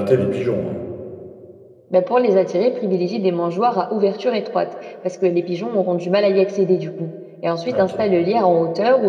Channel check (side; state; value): both; identical; correlation 1.00